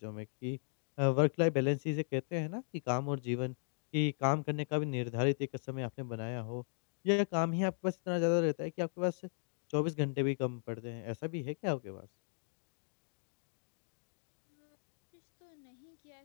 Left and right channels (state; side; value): silent; right; digital silence